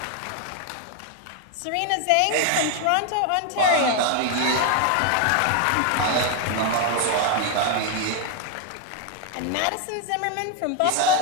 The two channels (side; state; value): both; different; correlation 0.00